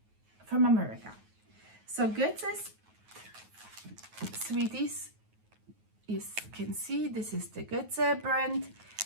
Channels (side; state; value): left; late; 9.4 ms